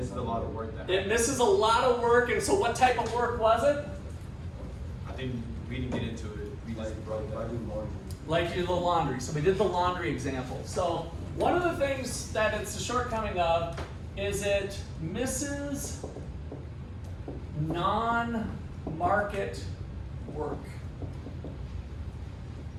a lot of work. It misses a lot of work, and so what type of work was it? I think we didn't get into it. We just brought that. Like the laundry. So we did the laundry example. So one of the things that it's a shortcoming of is it misses non-market work.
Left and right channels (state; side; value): identical; both; correlation 1.00